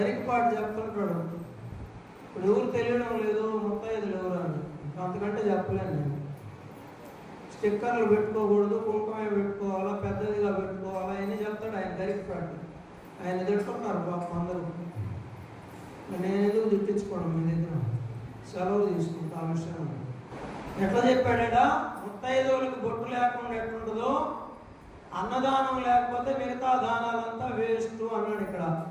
చెప్తుంటాడు. ఇప్పుడు ఎవరు తెలియడం లేదు ముత్తైదులు ఎవరు అని. అంతకంటే చెప్పలేను నేను. స్టిక్కర్లు పెట్టుకోకూడదు, కుంకుమే పెట్టుకోవాలా, పెద్దదిగా పెట్టుకోవాలా అని చెప్తాడు ఆయన గరికపాటి. ఆయన తిట్టుకుంటారు పాపం అందరూ. నేను ఎందుకు తిట్టించుకోవడం మీ దగ్గర, సెలవు తీసుకుంటా ఆ విషయం. ఎట్లా చెప్పాడా, ముత్తైదువులకు బొట్టు లేకుండా ఎట్లుంటుందో అన్నదానం లేకపోతే మిగతా దానాలంతా వేస్ట్ అన్నాడు ఇక్కడ.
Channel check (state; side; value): identical; both; correlation 1.00